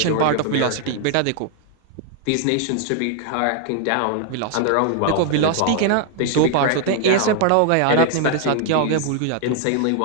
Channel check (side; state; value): both; different; correlation 0.00